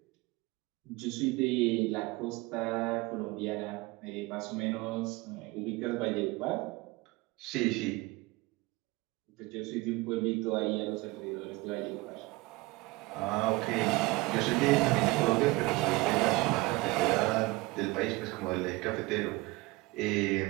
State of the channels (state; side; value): quieter; left; 22.4 dB